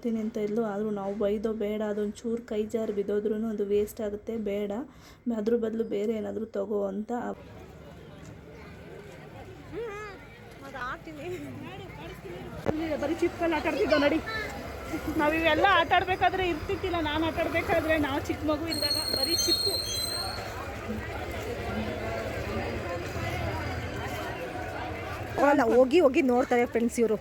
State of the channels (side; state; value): both; identical; correlation 1.00